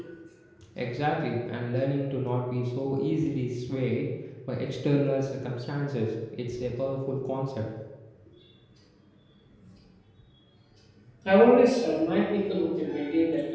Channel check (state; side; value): identical; both; correlation 1.00